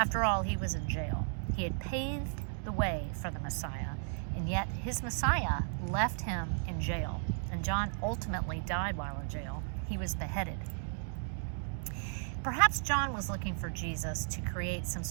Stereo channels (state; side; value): silent; left; digital silence